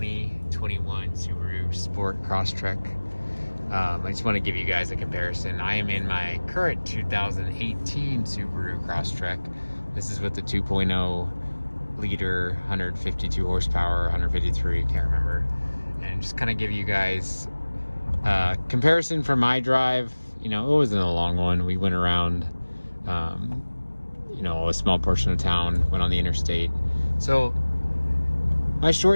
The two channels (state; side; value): inverted; both; correlation -1.00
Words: Subaru Sport Crosstrek. I just want to give you guys a comparison. I am in my current 2018 Subaru Crosstrek. This is with the 2.0 liter, 152 horsepower, 153, can't remember. And just kind of give you guys a comparison from my drive. You know, it wasn't a long one. We went around a small portion of town, went on the interstate. So my